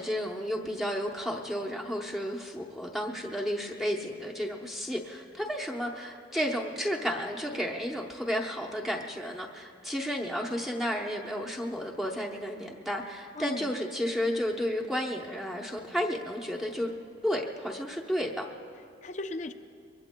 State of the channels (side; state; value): both; normal; correlation 0.77